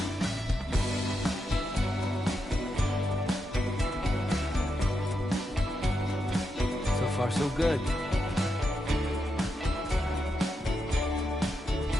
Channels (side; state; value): both; normal; correlation 0.85